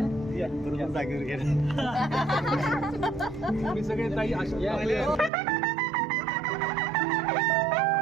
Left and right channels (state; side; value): drops out; left; at 5.3 s